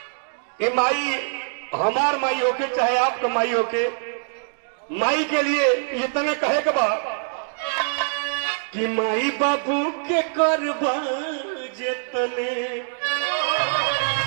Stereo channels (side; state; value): left; silent; digital silence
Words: ये माई हमार माई होके चाहे आपका माई होके, माई के लिए ये तने कहे के बा कि माई बाबू के करबा जेतने